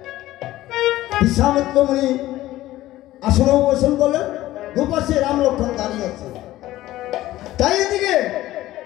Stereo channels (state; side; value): quieter; right; 15.6 dB